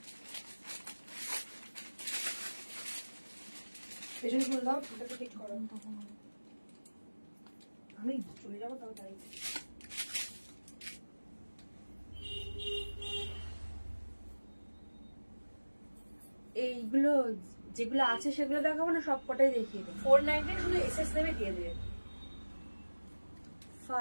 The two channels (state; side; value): inverted; both; correlation -1.00